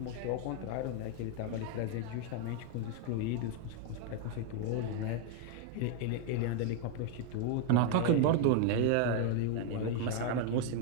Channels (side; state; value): both; different; correlation 0.00